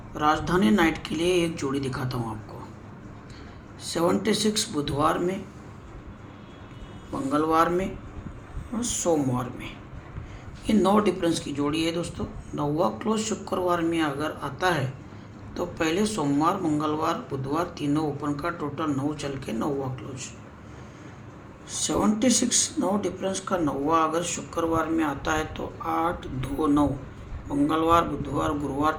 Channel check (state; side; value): identical; both; correlation 1.00